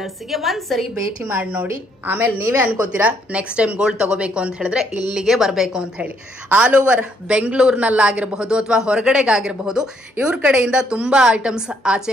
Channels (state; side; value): normal; both; correlation 0.70